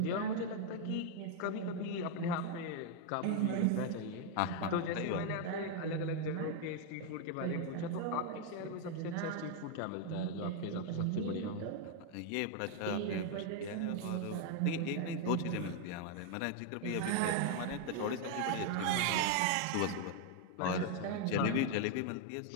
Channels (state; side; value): different; both; correlation 0.00